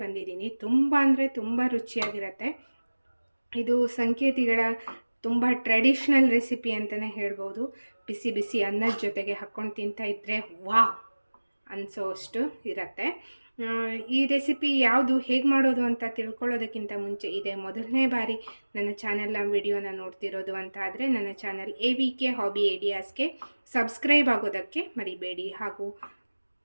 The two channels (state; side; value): inverted; both; correlation -1.00